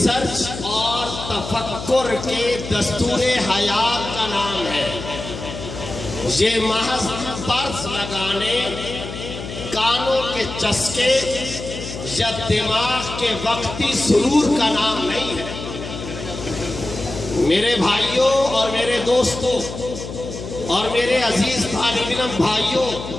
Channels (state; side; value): noise; left; hum, 9 dB below the sound